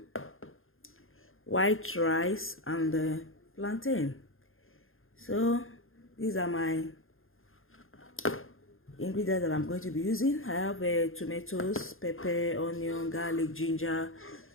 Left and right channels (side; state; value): right; late; 0.60 ms